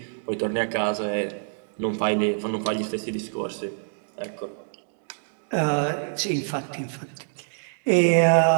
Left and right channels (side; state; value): left; silent; digital silence